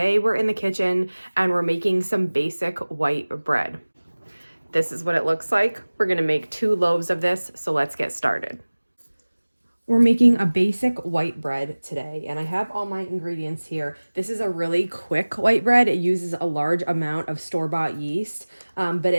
we're in the kitchen and we're making some basic white bread. This is what it looks like. We're gonna make 2 loaves of this, so let's get started. We're making a basic white bread today, and I have all my ingredients here. This is a really quick white bread. It uses a large amount of store-bought yeast, but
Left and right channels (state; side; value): inverted; both; correlation -1.00